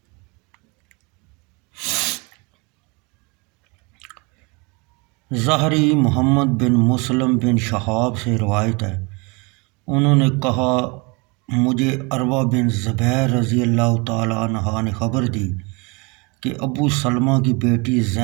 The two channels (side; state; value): left; quieter; 29.1 dB